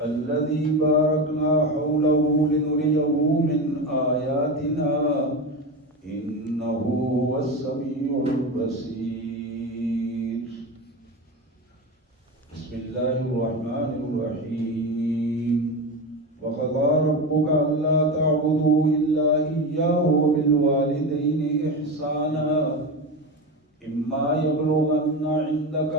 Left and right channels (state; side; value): normal; both; correlation 0.21